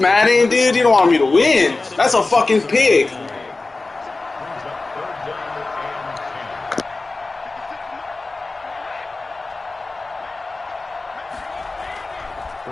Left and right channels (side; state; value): right; quieter; 3.4 dB